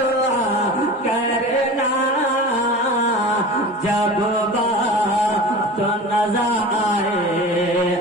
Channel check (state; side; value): normal; both; correlation 0.34